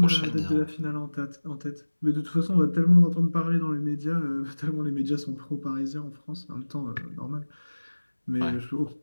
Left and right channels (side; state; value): both; inverted; correlation -1.00